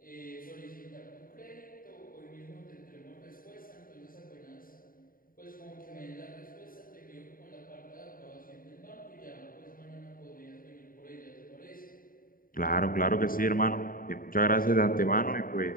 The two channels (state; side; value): late; right; 0.41 ms